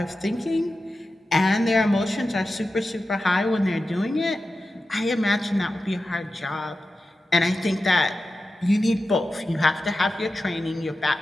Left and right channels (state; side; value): normal; both; correlation 0.93